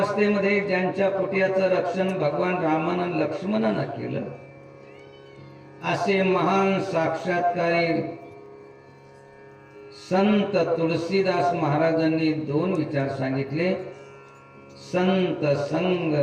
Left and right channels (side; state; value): both; identical; correlation 1.00